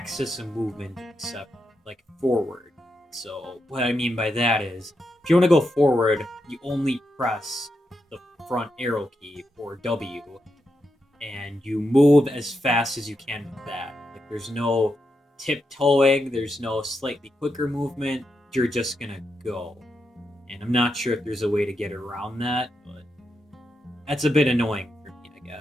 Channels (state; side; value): normal; both; correlation 0.84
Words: of movement except like forward. So what I mean by that is, if you want to go forward, you only press the front arrow key, or W, and you move as fast as you can with that. Like, there's no tiptoeing, there's no slightly quicker movement, you're just gonna go. And I'm not sure if there's a way to get around that, but that's a bit annoying for me, I